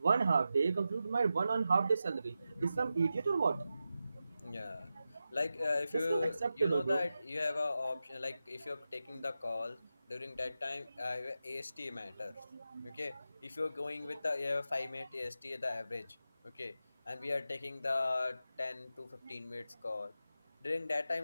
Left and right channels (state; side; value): inverted; both; correlation -0.91